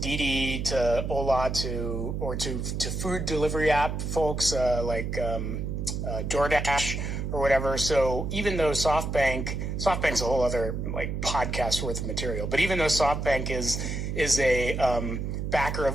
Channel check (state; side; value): noise; right; hum, 3 dB below the sound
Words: to Ola, to food delivery app folks like DoorDash or whatever. So even though SoftBank's a whole other like podcast worth of material, but even though SoftBank is a backer